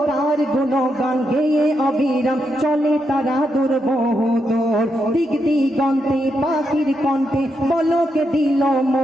তার গুণগান গেয়ে অবিরাম চলে তারা দূর বহুদূর। দিক দিগন্তে পাখির কণ্ঠে বলকে দিল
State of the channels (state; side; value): normal; both; correlation 0.82